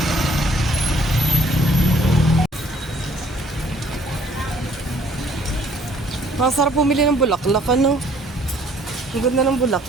Masarap pumili ng bulaklak, ano? Ang ganda ng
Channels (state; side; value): normal; both; correlation 0.60